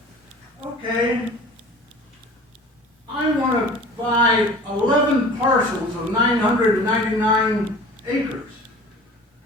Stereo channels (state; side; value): normal; both; correlation 0.42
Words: okay, I want to buy 11 parcels of 999 acres.